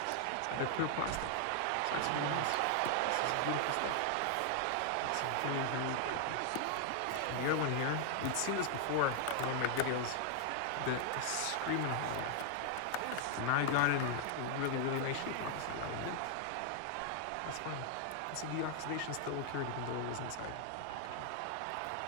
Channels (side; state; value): both; different; correlation 0.00